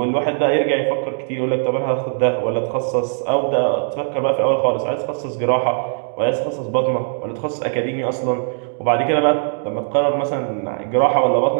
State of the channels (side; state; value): left; silent; digital silence